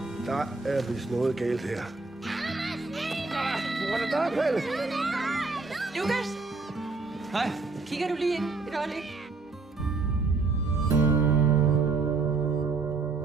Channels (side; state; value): left; quieter; 3.9 dB